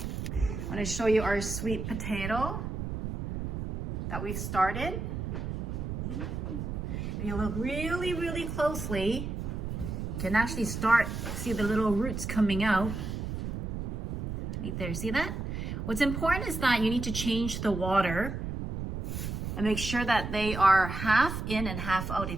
I'm going to show you our sweet potato that we've started. If you look really closely, you can actually see the little roots coming out. Right there, see that? What's important is that you need to change the water and make sure that they are half in and half out,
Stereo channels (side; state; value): right; noise; rumble, 4 dB below the sound